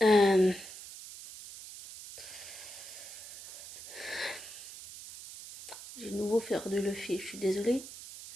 euh, j'ai de nouveau perdu le fil, je suis désolée.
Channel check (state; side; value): noise; right; hiss, 13 dB below the sound